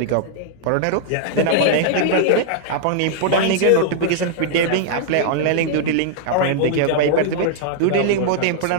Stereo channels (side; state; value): both; different; correlation -0.01